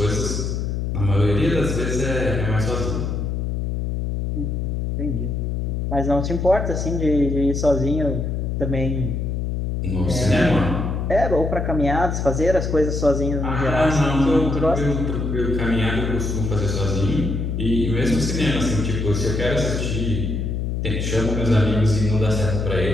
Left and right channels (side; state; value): left; noise; hum, 1 dB below the sound